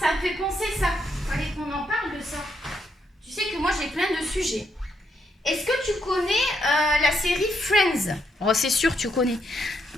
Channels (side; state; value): both; normal; correlation 0.77